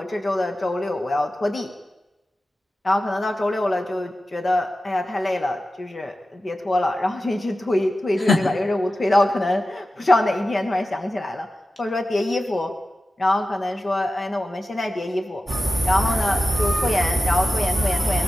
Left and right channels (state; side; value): normal; both; correlation 0.94